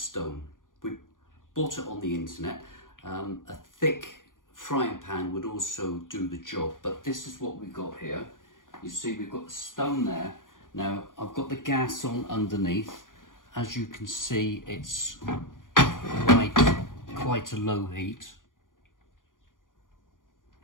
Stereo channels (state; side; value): late; right; 0.89 ms